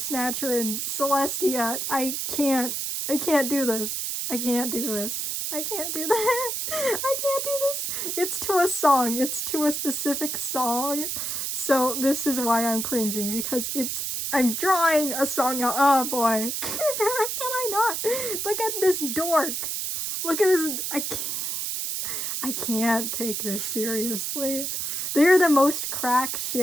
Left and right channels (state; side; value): noise; right; hiss, 2 dB below the sound